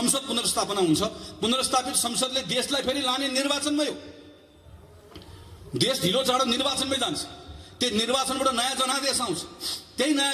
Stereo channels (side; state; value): both; identical; correlation 1.00